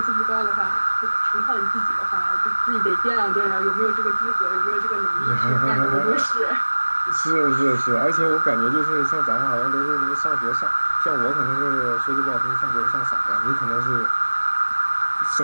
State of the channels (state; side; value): inverted; both; correlation -1.00